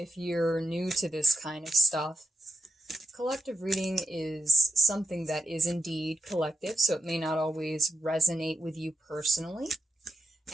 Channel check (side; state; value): both; normal; correlation 0.85